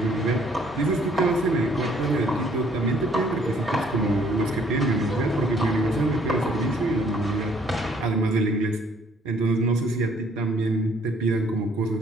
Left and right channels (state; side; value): normal; both; correlation 0.62